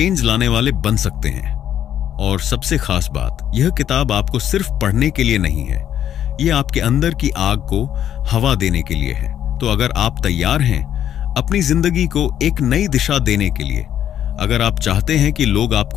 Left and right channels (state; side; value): quieter; right; 10.4 dB